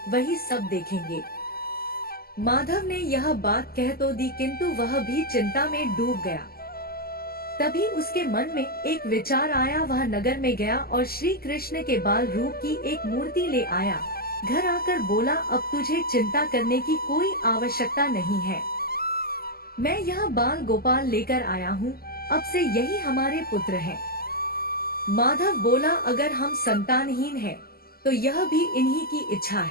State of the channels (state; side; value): late; right; 0.44 ms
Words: वही सब देखेंगे। माधव ने यह बात कह तो दी, किंतु वह भी चिंता में डूब गया। तभी उसके मन में एक विचार आया। वह नगर में गया और श्री कृष्ण के बाल रूप की एक मूर्ति ले आया। घर आकर बोला, अब तुझे चिंता करने की कोई आवश्यकता नहीं है। मैं यहाँ बाल गोपाल लेकर आया हूँ, अब से यही हमारे पुत्र हैं। माधव बोला, अगर हम संतानहीन हैं, तो यह भी इन्हीं की इच्छा